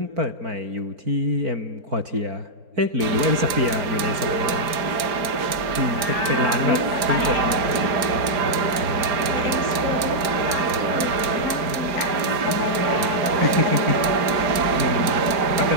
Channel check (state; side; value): late; left; 4.4 ms